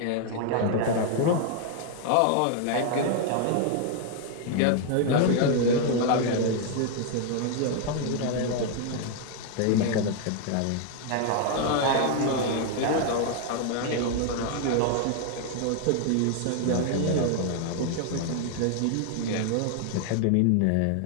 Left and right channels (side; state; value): both; different; correlation 0.00